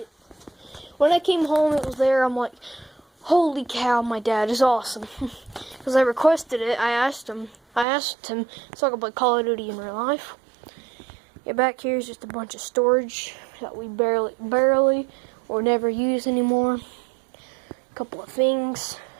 When I came home, it was there. I'm like, holy cow, my dad is awesome. Because I requested it. I asked him so I could play Call of Duty in real life. Yeah, back here is just a bunch of storage that we barely or never use anymore. A couple of things.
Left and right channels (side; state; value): left; drops out; at 7.9 s